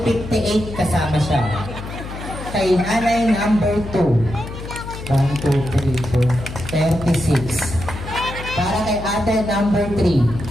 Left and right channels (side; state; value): left; noise; hum, 10 dB below the sound